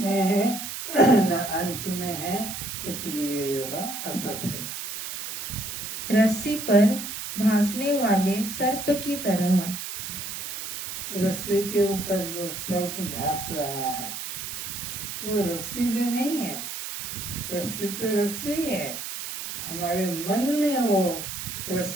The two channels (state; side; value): noise; right; hiss, 7 dB below the sound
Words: है न अंत में है, इसलिए यह असत है। रस्सी पर भासने वाले सर्प की तरह। रस्सी के ऊपर जो सर्प भास रहा है वो रस्सी में नहीं है, रस्सी तो रस्सी है, हमारे मन में वो